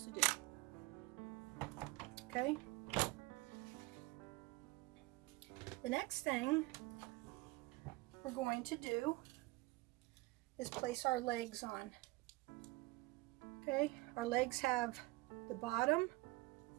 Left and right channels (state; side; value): quieter; left; 22.2 dB